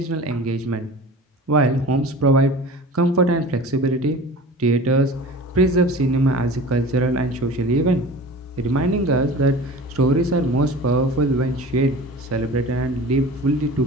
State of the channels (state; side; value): normal; both; correlation 0.38